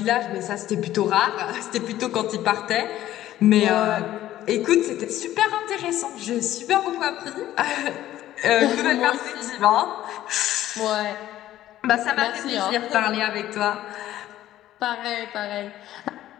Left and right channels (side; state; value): right; quieter; 13.6 dB